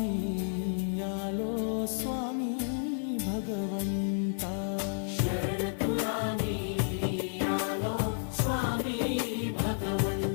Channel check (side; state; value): right; silent; 57 dB below the other